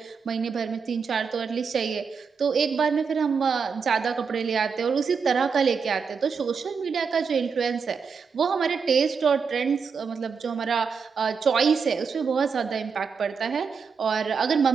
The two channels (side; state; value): left; quieter; 5.8 dB